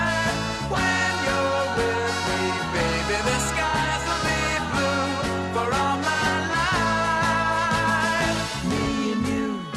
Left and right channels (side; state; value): both; identical; correlation 1.00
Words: When you're with me, baby, the skies will be blue for all my life. Me and you,